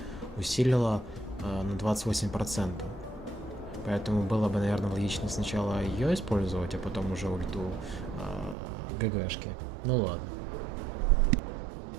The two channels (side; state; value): left; drops out; at 8.6 s